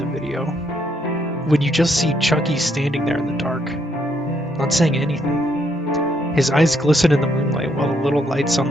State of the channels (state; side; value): normal; both; correlation 0.73